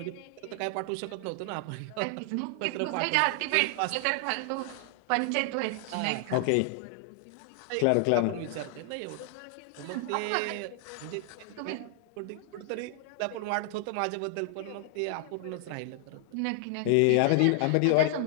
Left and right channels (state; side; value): different; both; correlation 0.00